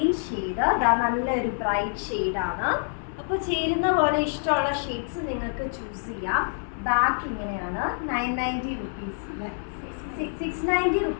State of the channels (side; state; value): right; silent; digital silence